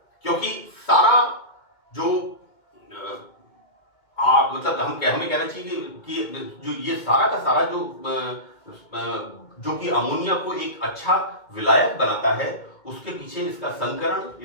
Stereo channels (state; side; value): late; right; 2.2 ms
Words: क्योंकि सारा जो मतलब हमें कहना चाहिए कि जो ये सारा का सारा जो कि अमोनिया को एक अच्छा विलायक बनाता है, उसके पीछे इसका संकरण,